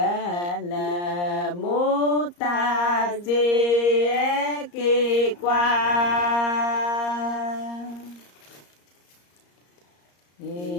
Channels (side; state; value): right; late; 34 ms